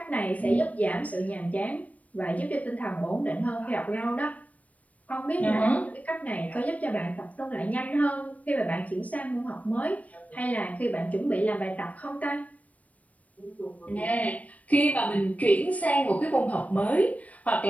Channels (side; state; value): right; late; 0.069 ms